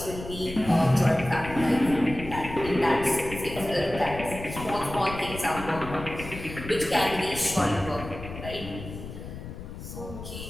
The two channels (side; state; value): left; noise; rumble, 11 dB below the sound